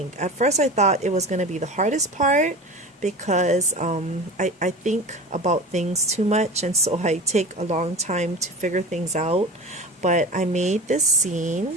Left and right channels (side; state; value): both; normal; correlation 0.32